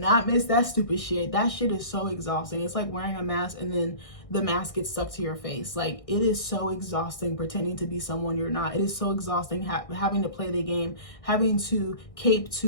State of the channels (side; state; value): right; late; 1.6 ms